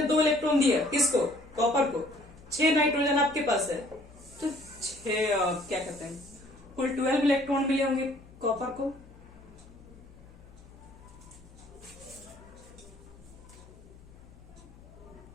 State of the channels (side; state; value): left; noise; hum, 22 dB below the sound